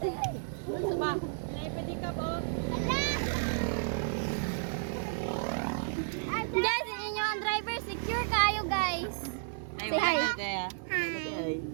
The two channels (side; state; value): left; silent; 56 dB below the other